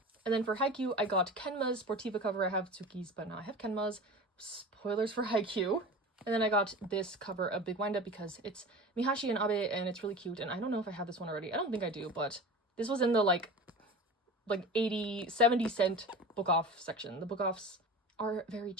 And then for Haikyuu, I got Kenma's Sportiva cover. I have Tsuki's, but now I have Kenma's. Spoilers for Haikyuu. And then I got this cover of Big Wind Up because it's Mihashi and Abe, and it's really cute. And I don't know if I have this one already. I don't think I do, but this was in the like 80, 70 cent book off section. The book offs are very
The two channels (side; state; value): both; normal; correlation 0.34